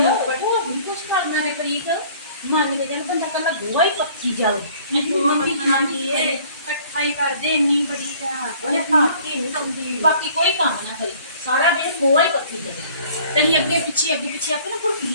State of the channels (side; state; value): both; inverted; correlation -0.53